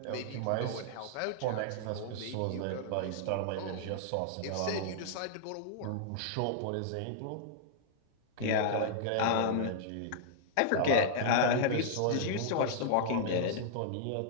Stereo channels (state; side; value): different; both; correlation -0.01